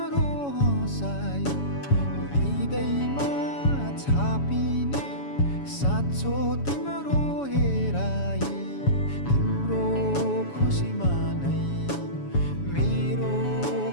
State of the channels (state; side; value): late; right; 7.1 ms